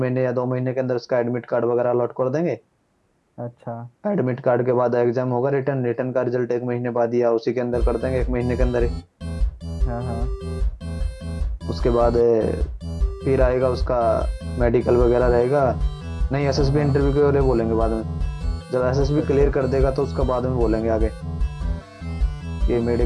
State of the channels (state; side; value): identical; both; correlation 1.00